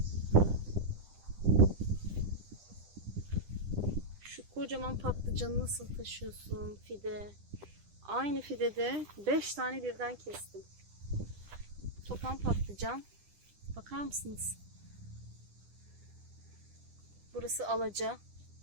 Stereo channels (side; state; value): left; late; 10 ms